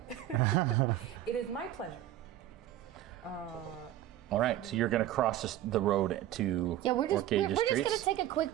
had. It is my pleasure. All right, so you're going to cross the road to Yeah, we're just Orcage's gonna Treats? take a quick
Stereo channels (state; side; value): quieter; left; 13.0 dB